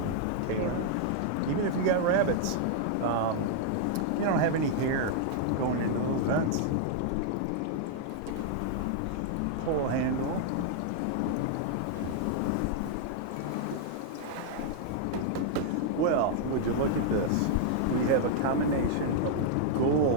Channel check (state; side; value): different; both; correlation 0.00